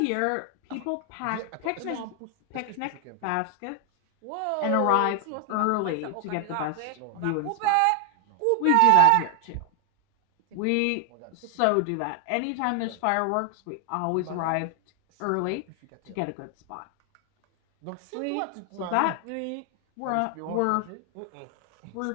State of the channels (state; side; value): different; both; correlation 0.00